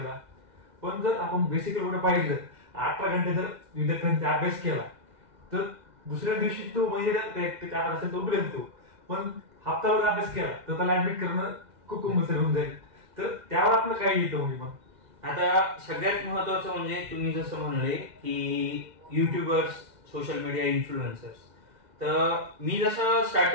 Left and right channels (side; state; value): left; late; 2.1 ms